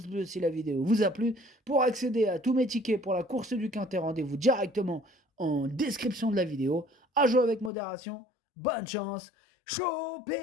bleu si la vidéo vous a plu. Pour accéder à tous mes tickets pour la course du Quintet, rendez-vous directement en description de la vidéo. À jouer avec modération. Bonne chance.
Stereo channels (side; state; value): right; drops out; at 7.7 s